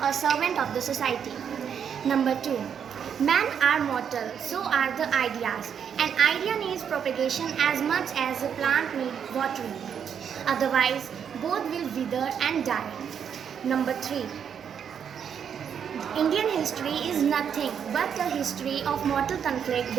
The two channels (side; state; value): left; quieter; 7.8 dB